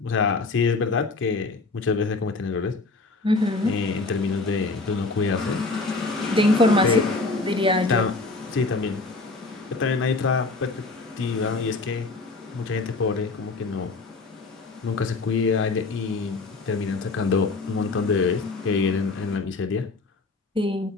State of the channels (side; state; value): right; quieter; 3.6 dB